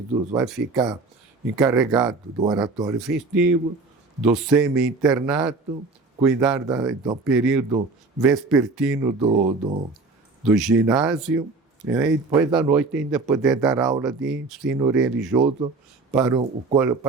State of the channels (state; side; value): quieter; left; 3.8 dB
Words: vai ficar encarregado do oratório festivo, do semi-internato, cuidar do período vespertino do ginásio, né? E depois da noite ainda poder dar aula de ensino religioso para o